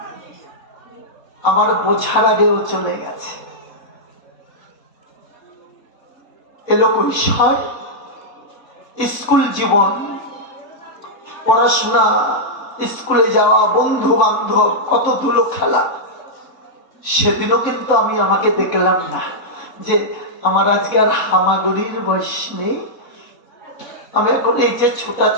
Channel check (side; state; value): right; late; 3.6 ms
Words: আমার বোঝার আগেও চলে গেছে। এলো কৈশোর, স্কুল জীবন, পড়াশোনা, স্কুলে যাওয়া, বন্ধু বান্ধব, কত ধুলো খেলা। সেদিনও কিন্তু আমি আমাকে দেখলাম না যে আমার আজকে আর হামাগুড়ির বয়স নেই। আমি এখন এই যে